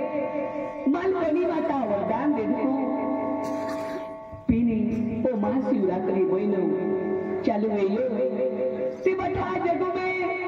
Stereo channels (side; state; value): both; identical; correlation 1.00